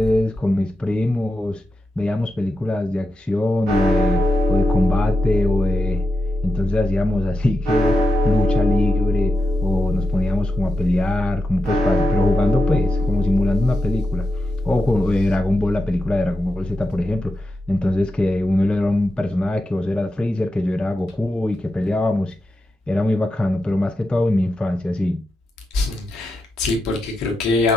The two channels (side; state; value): both; normal; correlation 0.88